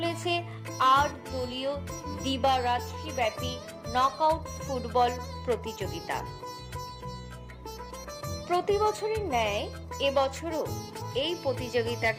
৮ দলীয় দিবারাত্রি ব্যাপী নকআউট ফুটবল প্রতিযোগিতা। প্রতি বছরের ন্যায় এবছরও এই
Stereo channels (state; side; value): identical; both; correlation 1.00